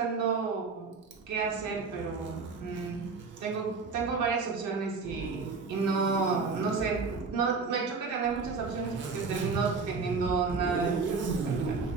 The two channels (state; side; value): quieter; left; 4.6 dB